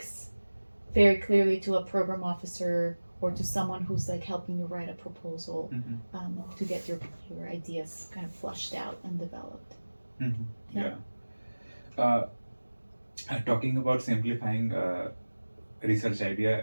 very clearly to a program officer or to someone who's like helping you write a proposal to get your ideas kind of flushed out and developed. Talking about simplifying research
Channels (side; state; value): both; inverted; correlation -1.00